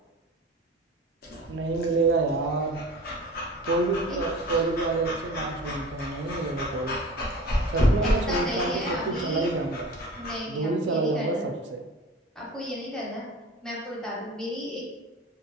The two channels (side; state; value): both; normal; correlation 0.39